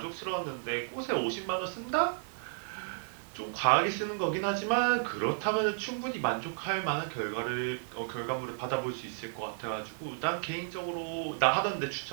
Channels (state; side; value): silent; left; digital silence